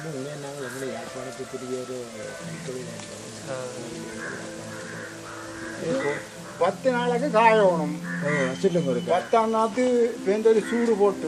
உண்மையாக நாங்கள் எங்களை யாழ்ப்பாணத்துக்குரிய ஒரு 10 நாளைக்கு காயணும். சொல்லுங்க. 10ஆம் நாத்து பேருந்து ஒரு சூடு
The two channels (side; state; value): both; identical; correlation 1.00